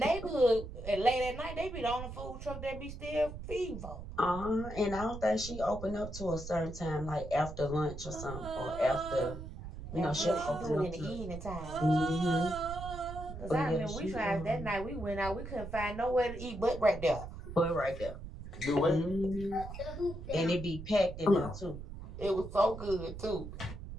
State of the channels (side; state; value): right; noise; rumble, 10 dB below the sound